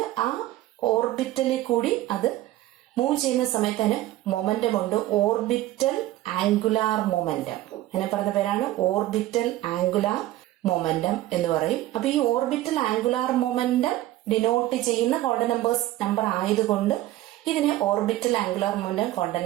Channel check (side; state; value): left; quieter; 15.3 dB